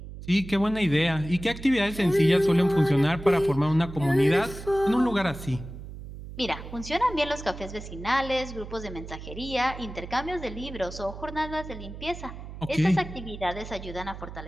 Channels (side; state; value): right; noise; hum, 12 dB below the sound